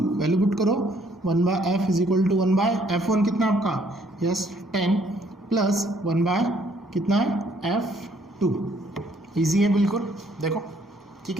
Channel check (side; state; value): both; normal; correlation 0.65